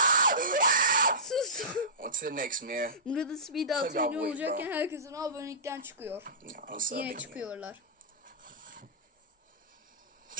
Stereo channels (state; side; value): normal; both; correlation -0.18